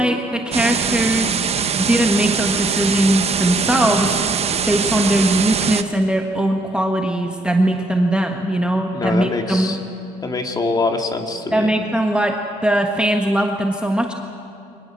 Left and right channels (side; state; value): both; normal; correlation 0.72